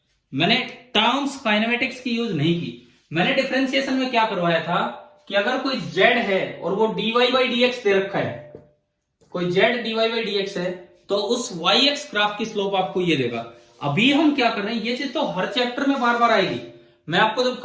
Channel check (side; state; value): both; identical; correlation 1.00